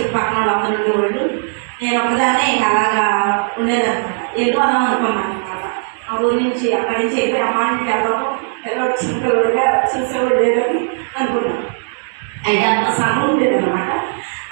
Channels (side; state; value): left; silent; digital silence